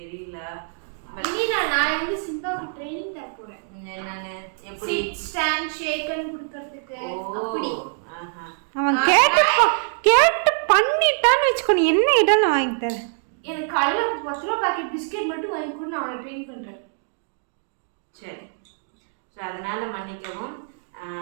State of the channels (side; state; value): left; silent; 63 dB below the other